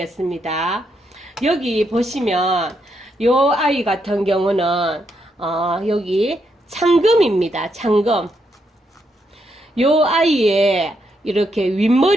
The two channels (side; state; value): both; normal; correlation 0.79